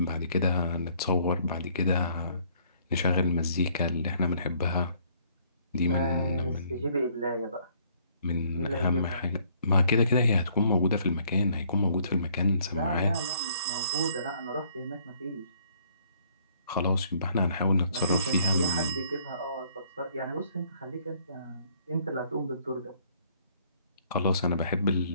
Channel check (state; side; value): inverted; both; correlation -0.63